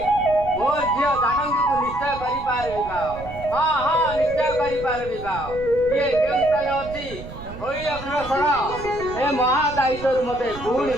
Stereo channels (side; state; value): right; noise; rumble, 13 dB below the sound